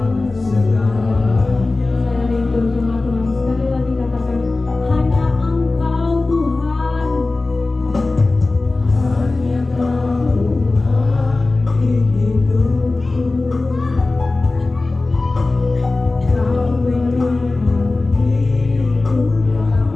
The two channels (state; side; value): quieter; right; 3.3 dB